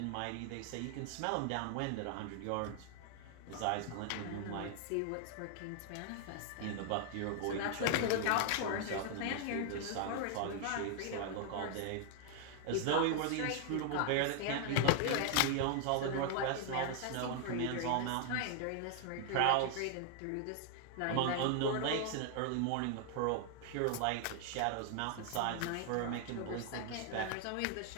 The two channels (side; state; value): both; different; correlation 0.00